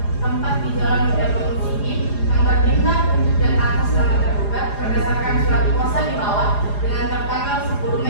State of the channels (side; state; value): right; late; 4.9 ms